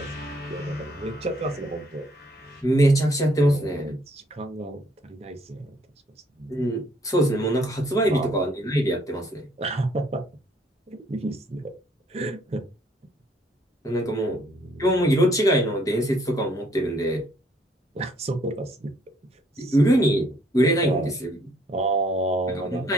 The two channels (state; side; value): normal; both; correlation 0.65